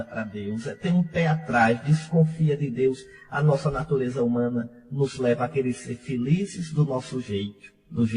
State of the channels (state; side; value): identical; both; correlation 1.00